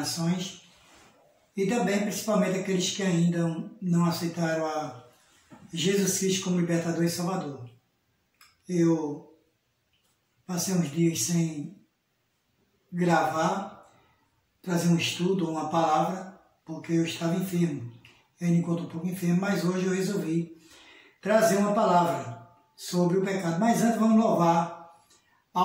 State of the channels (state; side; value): identical; both; correlation 1.00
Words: e também, principalmente, aqueles que ainda não aceitaram a Jesus Cristo como libertador e salvador. Eu passei uns dias sem gravar, trazer um estudo, uma palavra, porque eu estava enfermo. Eu me encontro um pouco enfermo, mas hoje eu resolvi trazer uma palavra sobre o pecado. Mas antes vamos louvar